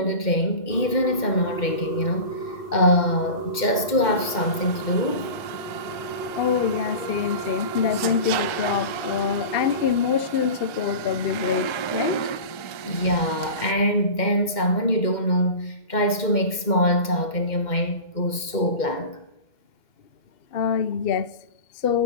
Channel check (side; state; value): right; late; 2.1 ms